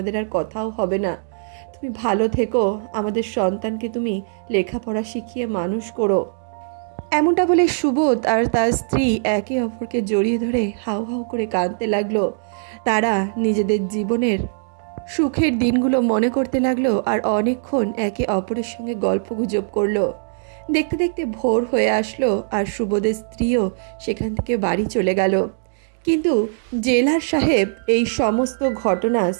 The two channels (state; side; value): silent; left; digital silence